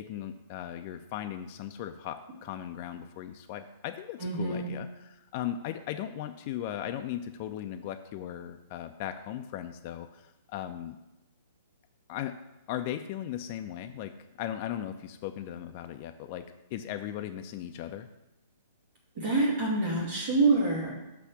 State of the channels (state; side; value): inverted; both; correlation -0.38